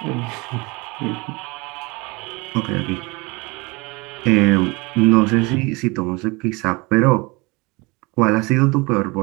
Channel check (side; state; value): left; quieter; 25.9 dB